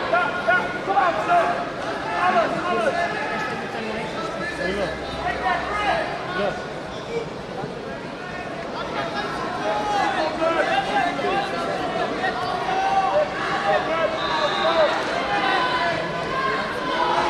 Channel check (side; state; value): both; identical; correlation 1.00